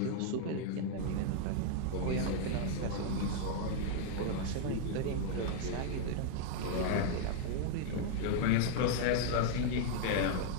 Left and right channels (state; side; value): different; both; correlation 0.00